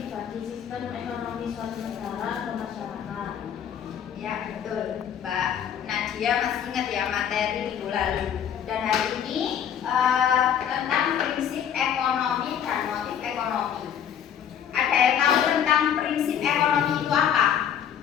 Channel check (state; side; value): quieter; right; 8.9 dB